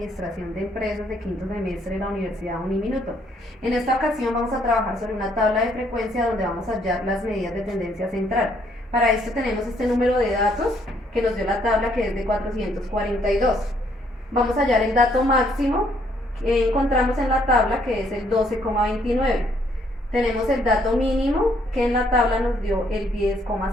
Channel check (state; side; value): normal; both; correlation 0.68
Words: de Empresas de quinto semestre de la Universidad Uniminuto. En esta ocasión vamos a trabajar sobre una tabla de frecuencia donde vamos a hallar las medidas de tendencia central. Para esto tenemos este número de datos que nos dio la tabla, que es de 442. Vamos a hallar el dato máximo que encontramos en la tabla, que es el 12,29. Tenemos el dato mínimo, que en la tabla nos dio el